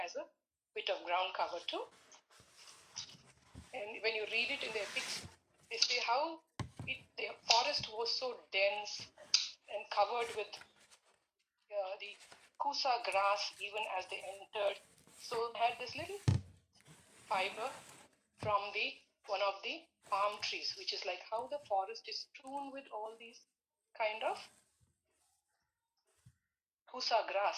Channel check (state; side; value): identical; both; correlation 1.00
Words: as a bit of ground cover too. And when you read it in the epics, they say how the forest was so dense and covered with the kusa grass even as they entered. So they had this little fiber from one of the palm trees, which is like how the forest is strewn with all these kind of kusa